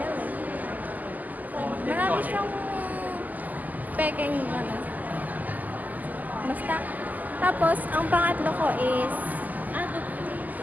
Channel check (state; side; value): late; left; 0.081 ms